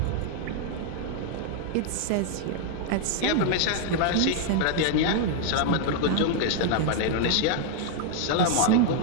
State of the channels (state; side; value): different; both; correlation 0.00